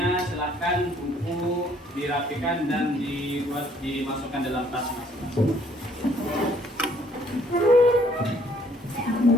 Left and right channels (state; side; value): normal; both; correlation 0.63